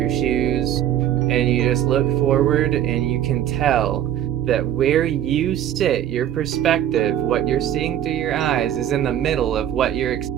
shoes, and you just look forward and you can tell that where you sit, your perspective, what you're seeing through your eyes is in the middle of what you're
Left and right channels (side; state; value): left; quieter; 11.1 dB